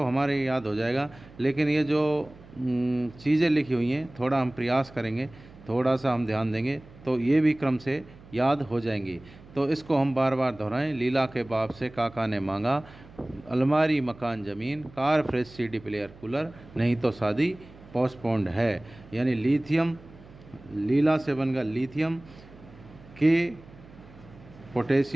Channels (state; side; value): noise; right; hum, 21 dB below the sound